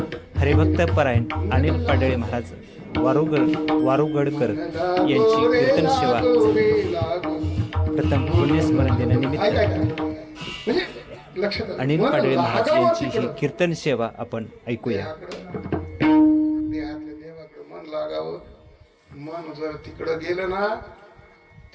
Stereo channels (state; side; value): identical; both; correlation 1.00